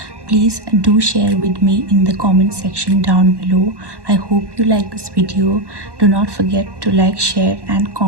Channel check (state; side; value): late; left; 1.1 ms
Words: please do share with me in the comment section down below. I hope you like this video. Do not forget to like, share and